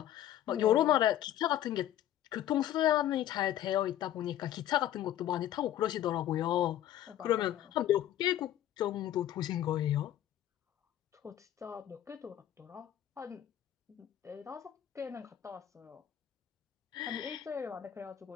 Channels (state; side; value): quieter; right; 12.0 dB